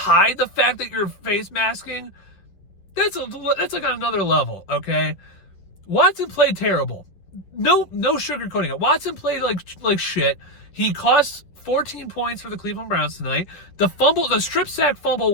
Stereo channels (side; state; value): right; late; 10 ms